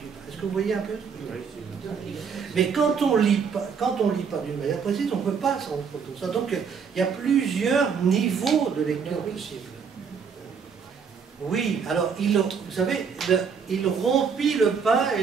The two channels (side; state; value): left; quieter; 6.2 dB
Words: pain. Est-ce que vous voyez un peu? Mais quand on lit pas d'une manière précise, on ne peut pas s'en rendre compte de ça. Donc il y a plusieurs niveaux de lecture possibles. Oui, alors vous savez, il rompit le pain et